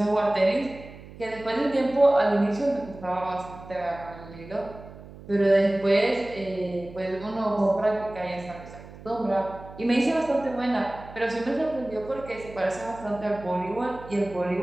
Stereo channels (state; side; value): noise; right; hum, 17 dB below the sound